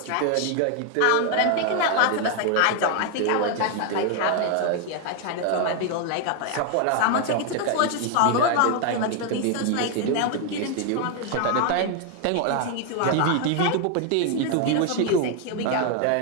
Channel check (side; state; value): both; different; correlation 0.00